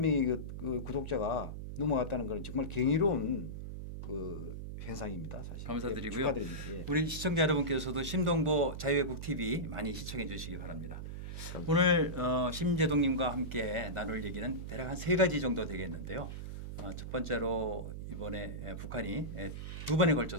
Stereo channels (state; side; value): noise; right; hum, 7 dB below the sound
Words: 그 구독자가 넘어갔다는 것은 정말 경이로운 그 현상입니다. 사실. 감사드리고요. 축하드립니다. 우리 시청자 여러분께서도 심동보 자유애국 TV 많이 시청해 주시기 바랍니다. 오늘 심재동님과 함께 나눌 얘기는 대략 한 3가지 정도 되겠는데요. 첫 번째로 이번에 북한이 2번에